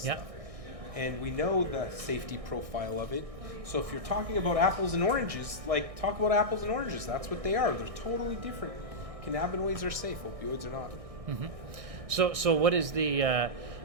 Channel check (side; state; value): left; late; 1.6 ms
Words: stuff. And we know the safety profile of it. So if you're talking about apples and oranges, talk about apples and oranges. That's what they are. They're totally different. Cannabinoids are safe, opioids are not. So what is the?